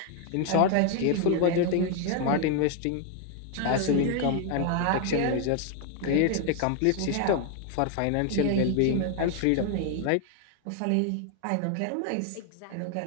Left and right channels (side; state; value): both; different; correlation 0.00